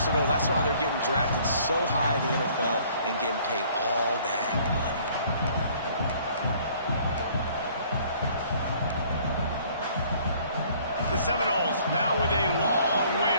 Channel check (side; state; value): both; inverted; correlation -0.58